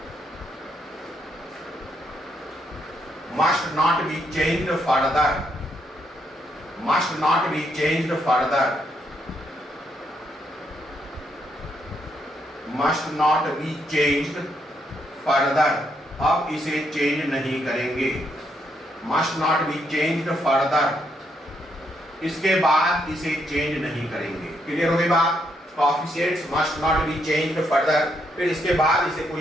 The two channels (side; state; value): both; normal; correlation 0.76